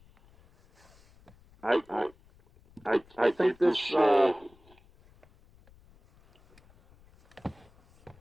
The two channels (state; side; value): noise; left; rumble, 28 dB below the sound